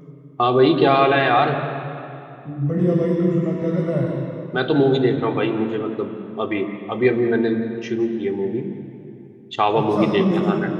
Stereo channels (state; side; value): identical; both; correlation 1.00